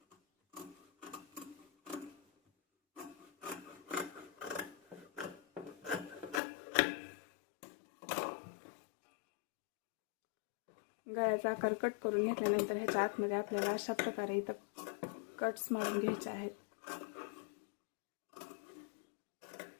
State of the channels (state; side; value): drops out; right; at 6.4 s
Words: गळ्याचा आकार कट करून घेतल्यानंतर ह्याच्या आतमध्ये आपल्याला अशा प्रकारे इथं कट्स मारून घ्यायचे आहेत.